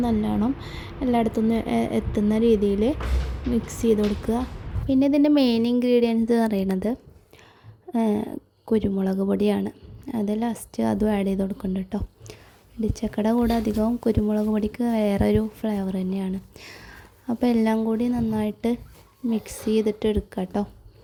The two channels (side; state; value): both; identical; correlation 1.00